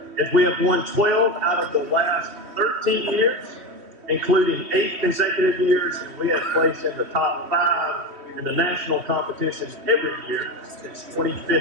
as we have won 12 out of the last 13 years, including 8 consecutive years. We have placed in the top 5 in the national competition every year since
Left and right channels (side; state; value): left; late; 3.1 ms